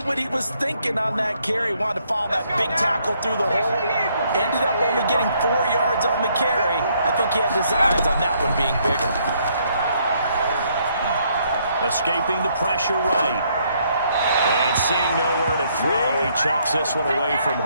what he was thinking on that carry. Wanted to follow that big tackle through the hole. Ended up only getting 4 yards on the carry. I think he had designs on that one being bigger. Escaping the pressure right. And seeing nowhere to throw, he chucks this one away from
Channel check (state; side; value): inverted; both; correlation -0.70